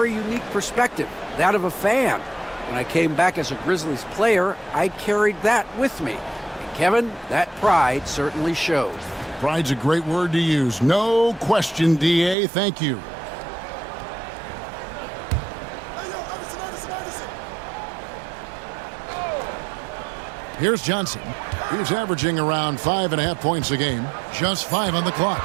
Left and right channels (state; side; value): drops out; left; at 12.4 s